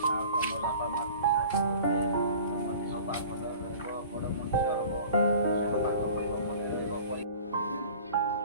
ତମ ବାପା ମାଆକୁ ସାହାଯ୍ୟ କରିବେ, ତମ ଦେହ ପା ଭଲ ରହିବ, ବଡ଼ ମଣିଷ ହବ, ପାଠ ପଢ଼ିବ, ମନେ ରହିବ।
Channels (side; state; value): both; inverted; correlation -0.44